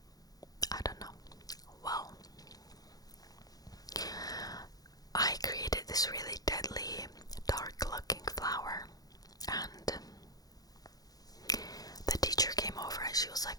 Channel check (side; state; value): right; late; 0.18 ms